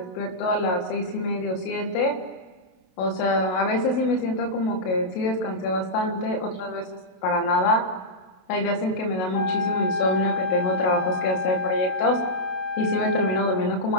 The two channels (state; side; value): late; right; 27 ms